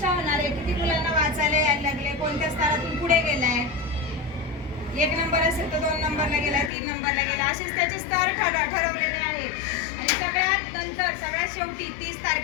होणार आहे. किती मुलांना वाचायला यायला लागले, कोणत्या स्तरातून पुढे गेलाय, 1 नंबर असेल तर 2 नंबरला गेलाय, 3 नंबरला गेला, असेच त्याचे स्तर ठरवलेले आहेत. आणि सगळ्यात नंतर सगळ्यात शेवटी 30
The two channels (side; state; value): right; drops out; at 6.7 s